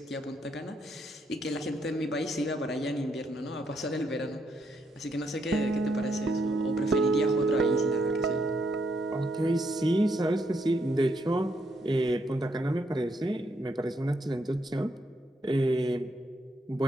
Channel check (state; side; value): normal; both; correlation 0.76